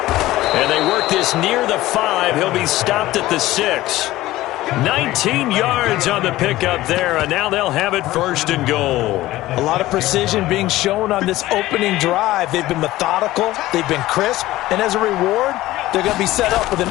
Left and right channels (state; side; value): quieter; right; 16.6 dB